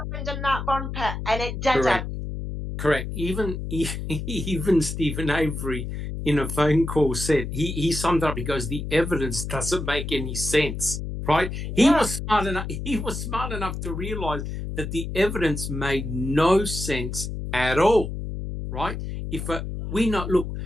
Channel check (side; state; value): left; noise; hum, 5 dB below the sound